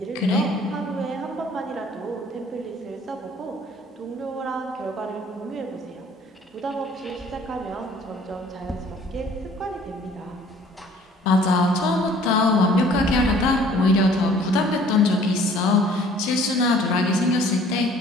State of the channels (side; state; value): both; normal; correlation 0.54